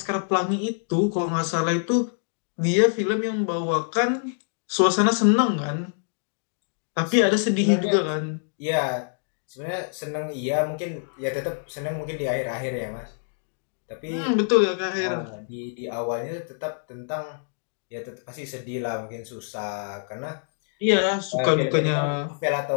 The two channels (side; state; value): right; silent; digital silence